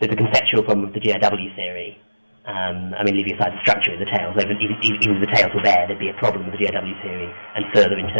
a conceptual problem with the GRW theory. I mean, leaving aside the structure of the tails, even if the tails were there, there'd be a problem with the GRW theory and further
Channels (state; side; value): inverted; both; correlation -1.00